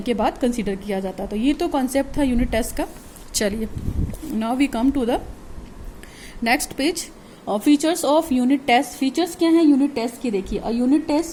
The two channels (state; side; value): identical; both; correlation 1.00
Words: के बाद कंसीडर किया जाता है। तो ये तो कॉन्सेप्ट था यूनिट टेस्ट का। चलिए, now we come to the next page. Features of unit test. Features क्या हैं यूनिट टेस्ट के, देखिए। A unit